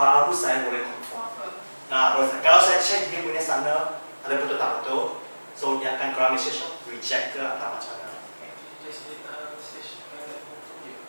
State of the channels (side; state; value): both; inverted; correlation -1.00